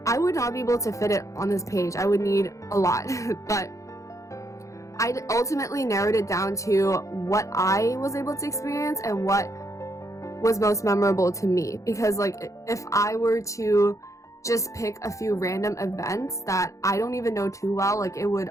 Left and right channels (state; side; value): late; right; 0.15 ms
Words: I would not be able to fit it on this page. I would need a lot. But I ultimately narrowed it down to what I was able to experience and what was most memorable to me. Because like if I were to just pick a few random events that I don't even know too well, like it would